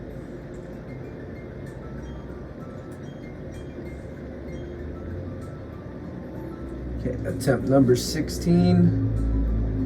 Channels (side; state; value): both; identical; correlation 1.00